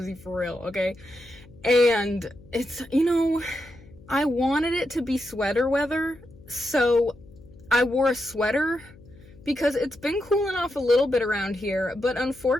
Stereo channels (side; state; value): left; noise; hum, 22 dB below the sound